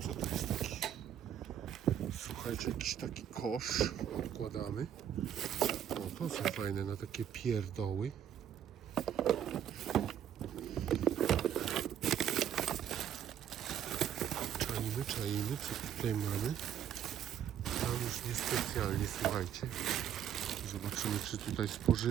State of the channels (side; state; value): left; quieter; 9.8 dB